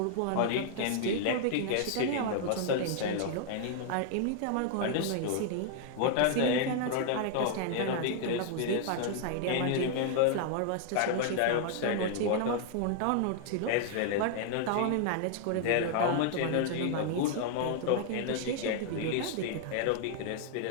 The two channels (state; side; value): different; both; correlation 0.00